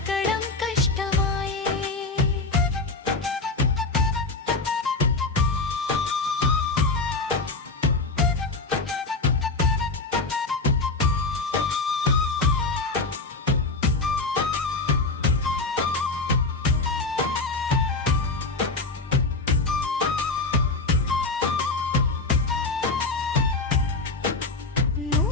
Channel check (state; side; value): quieter; right; 3.5 dB